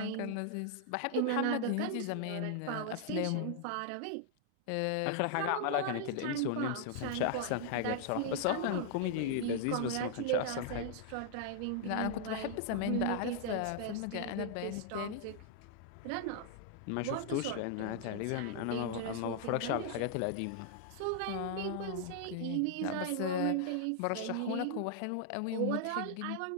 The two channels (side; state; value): both; different; correlation -0.01